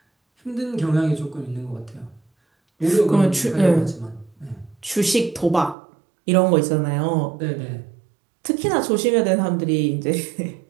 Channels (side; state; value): left; drops out; at 5.8 s